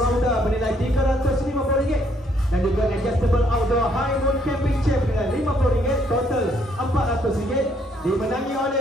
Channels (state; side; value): normal; both; correlation 0.68